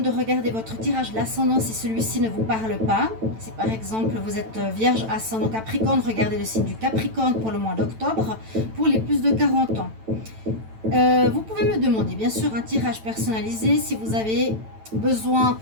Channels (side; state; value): left; late; 9.0 ms